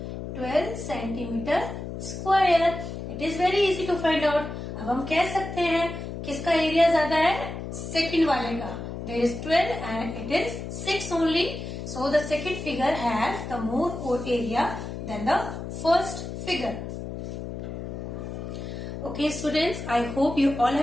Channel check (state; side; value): noise; left; hum, 7 dB below the sound